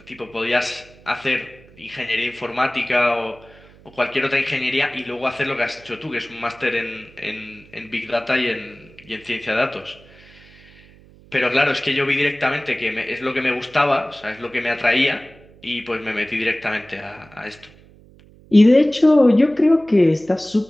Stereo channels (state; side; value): noise; right; hum, 25 dB below the sound